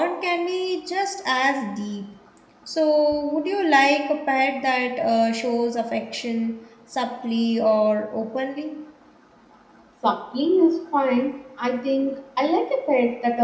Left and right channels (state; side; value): identical; both; correlation 1.00